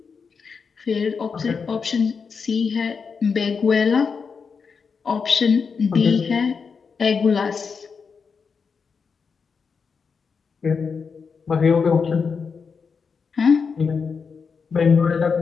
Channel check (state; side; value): quieter; right; 5.6 dB